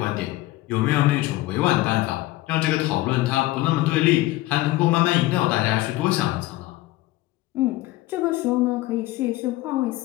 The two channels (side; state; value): right; quieter; 17.9 dB